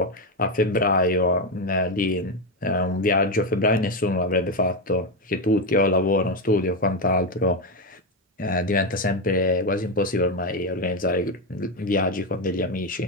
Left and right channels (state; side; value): normal; both; correlation 0.10